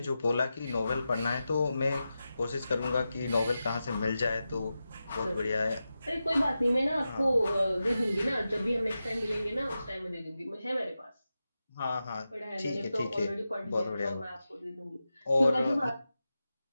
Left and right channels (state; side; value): inverted; both; correlation -0.92